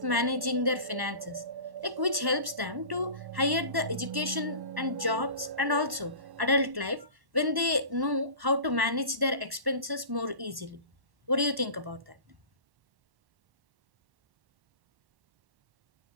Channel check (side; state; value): left; late; 1.1 ms